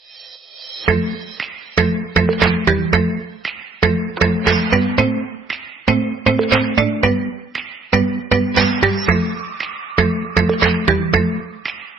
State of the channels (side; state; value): left; quieter; 3.2 dB